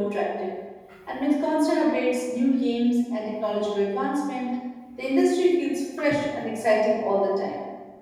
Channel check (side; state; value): both; identical; correlation 1.00